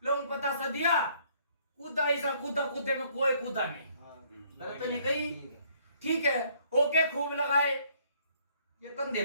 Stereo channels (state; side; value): inverted; both; correlation -0.64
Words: लोग पता सा दिया कूदा ऐसा कूदा, कूदे में कोई कूदा नहीं। गलत तो नहीं कही। ठीक है, ओके खूब लगाए, ये कंधे